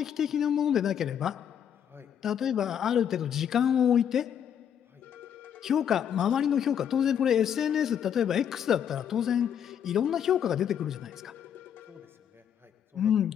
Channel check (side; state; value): right; quieter; 8.8 dB